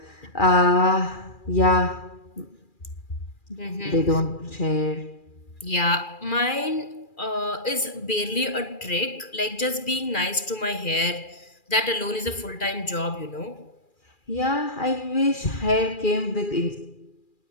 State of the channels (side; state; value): right; late; 2.4 ms